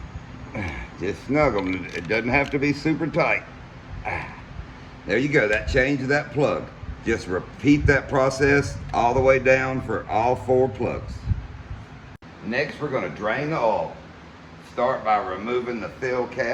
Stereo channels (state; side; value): identical; both; correlation 1.00